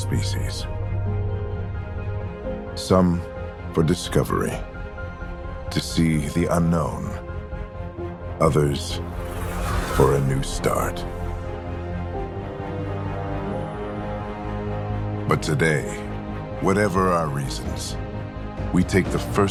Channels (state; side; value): identical; both; correlation 1.00